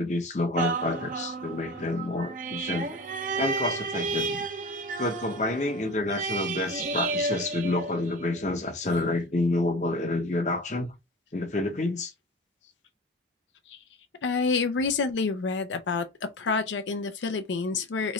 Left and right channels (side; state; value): both; normal; correlation 0.34